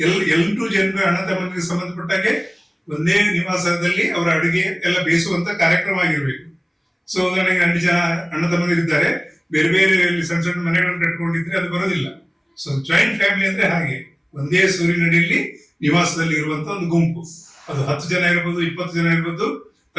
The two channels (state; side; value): identical; both; correlation 1.00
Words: ಜನರು ಅಣ್ಣ ತಮ್ಮಂದಿರಿಗೆ ಸಂಬಂಧಪಟ್ಟಾಗೆ ಒಂದೇ ನಿವಾಸದಲ್ಲಿ ಅವರ ಅಡುಗೆ ಎಲ್ಲ ಬೇಯಿಸುವಂತ ಕಾರ್ಯಕ್ರಮ ಆಗಿರ್ಬೇಕು. ಸೊ ಉದಾಹರಣೆಗೆ 8 ಜನ ಅಣ್ಣ ತಮ್ಮಂದಿರಿದ್ದಾರೆ, ಬೇರೆ ಬೇರೆ ಸಣ್ಣ ಸಣ್ಣ ಮನೆಗಳನ್ನು ಕಟ್ಕೊಂಡಿದ್ರೆ ಅದು ಬರೋದಿಲ್ಲ. ಸೊ ಜಾಯಿಂಟ್ ಫ್ಯಾಮಿಲಿ ಅಂದ್ರೆ ಹಾಗೆ, ಒಂದೇ ಸೂರಿನಡಿಯಲ್ಲಿ ನಿವಾಸದಲ್ಲಿ ಇರುವಂತ ಒಂದು ಗುಂಪು. ಅದು 10 ಜನ ಇರ್ಬೋದು, 20 ಜನ ಇರ್ಬೋದು.